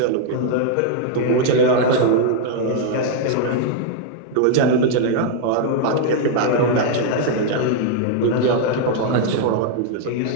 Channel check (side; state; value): both; different; correlation -0.01